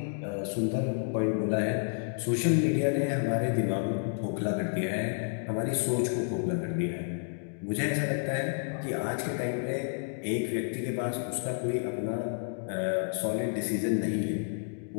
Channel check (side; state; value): right; silent; digital silence